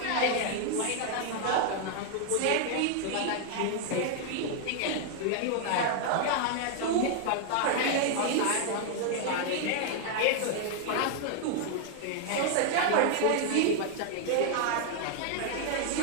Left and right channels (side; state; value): both; different; correlation 0.00